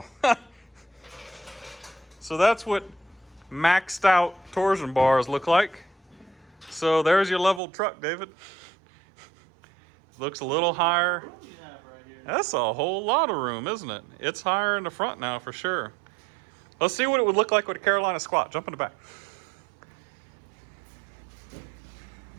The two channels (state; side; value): drops out; left; at 7.6 s